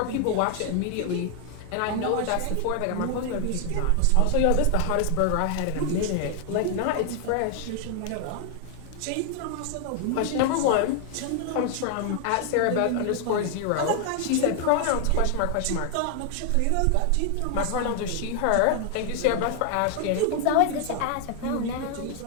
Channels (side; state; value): both; different; correlation 0.00